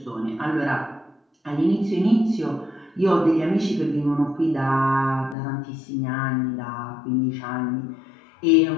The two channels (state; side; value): drops out; right; at 5.4 s